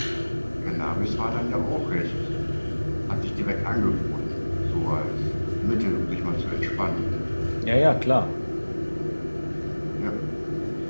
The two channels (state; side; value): inverted; both; correlation -1.00